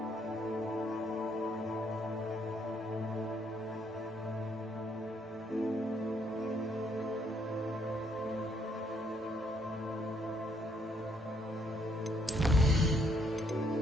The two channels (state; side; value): normal; both; correlation 0.70